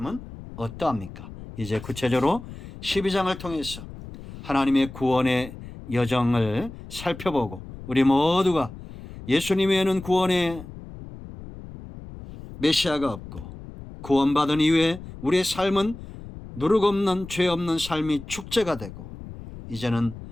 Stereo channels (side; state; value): left; noise; rumble, 14 dB below the sound